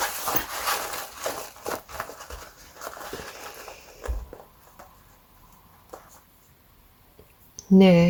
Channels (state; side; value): identical; both; correlation 1.00